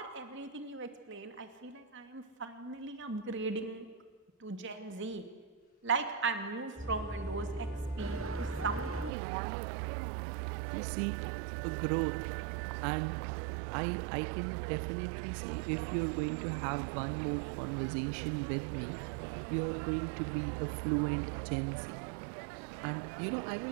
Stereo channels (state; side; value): drops out; left; at 9.1 s